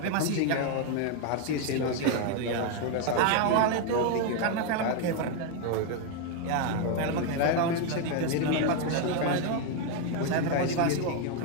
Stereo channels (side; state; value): both; different; correlation 0.01